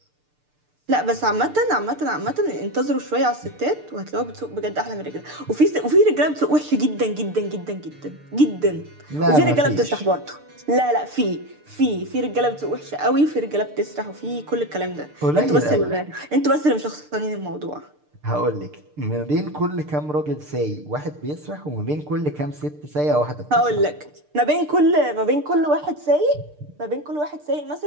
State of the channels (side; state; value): left; late; 6.7 ms